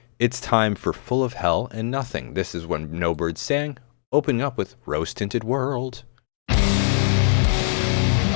It's time for Full of Hell and Nothing. This is when No Birds Sang, opening up with Rose Tinted World.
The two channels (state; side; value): silent; right; digital silence